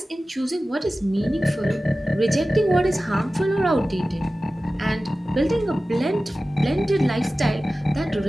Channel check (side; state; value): both; normal; correlation 0.95